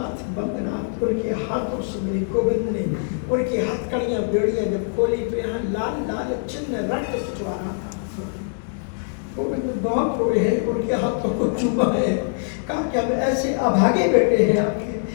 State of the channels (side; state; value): right; silent; digital silence